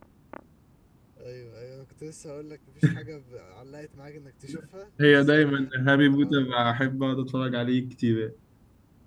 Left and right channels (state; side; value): identical; both; correlation 1.00